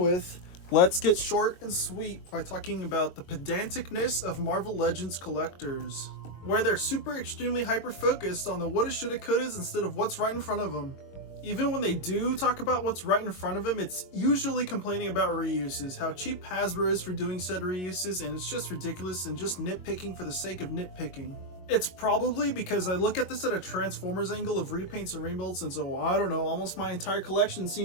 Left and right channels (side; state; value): right; late; 22 ms